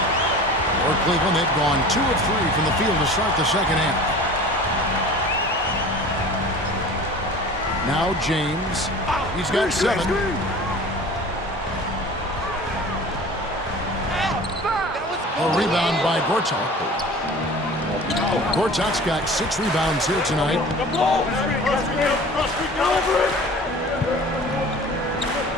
For Cleveland, they've gone 2 of 3 from the field to start the second half. Now James. He's got 7. A rebound by Gortat. Gortat's got 6 rebounds here tonight.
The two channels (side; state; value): both; normal; correlation 0.41